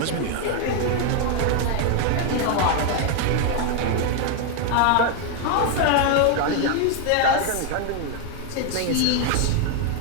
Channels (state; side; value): different; both; correlation 0.00